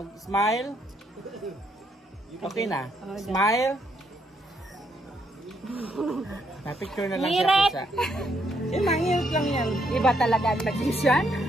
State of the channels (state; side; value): normal; both; correlation 0.74